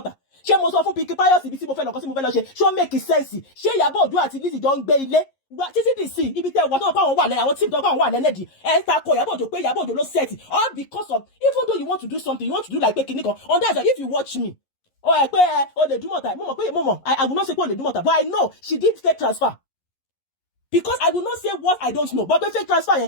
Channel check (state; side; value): late; right; 11 ms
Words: Ṣé mo sọ fún Pinky Pius ibi tí mo fẹ́ lọ kọ́ sí mo fẹ́ lọ ṣe? Ṣó make sense? Ṣé Iyabo Ojo àti Lizzy jọ ń gbé ilé? Títí dì sí ibi tẹ́ wà tó pa àwọn wà lẹ́ àwọn tí tó pa àwọn wà lẹ́nẹ̀dì. Ẹ ta ko Iyabo Ojo pé Iyabo Ojo ló set all because of even though you want to do something, you want to do like pé kinní kan. On that if you watch me pé o lè Ìdúmọ̀tà mo mọ̀ I will not say pé o lè Ìdúmọ̀tà, but I know she did fake transfer. Because I will not say what I don't know. But the fake transfer